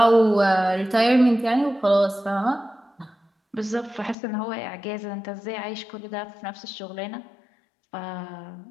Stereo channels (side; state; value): right; drops out; at 4.2 s